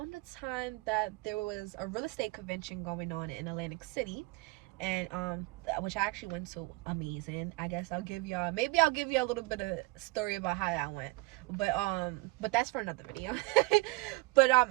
the time that there was a real estate convention going on in Atlantic City, and which I actually went to. Amazing. I guess I'll give y'all a little bit of story about how that went, but that's for another video. But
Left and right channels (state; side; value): quieter; left; 23.7 dB